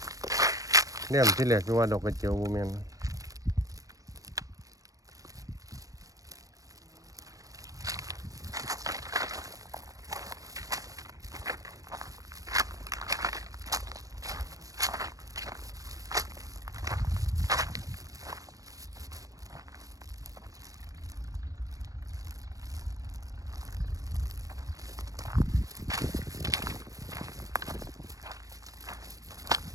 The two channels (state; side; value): late; left; 0.16 ms